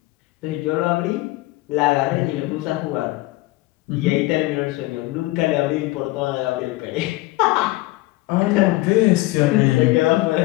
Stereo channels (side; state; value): right; quieter; 19.9 dB